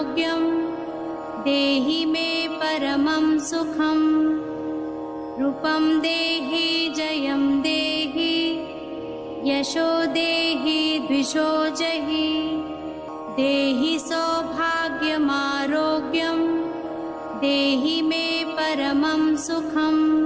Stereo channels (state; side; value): identical; both; correlation 1.00